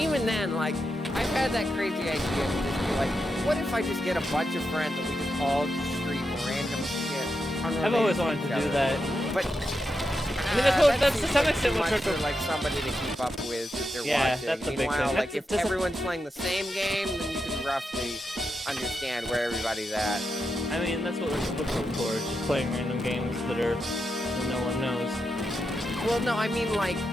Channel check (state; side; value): normal; both; correlation 0.86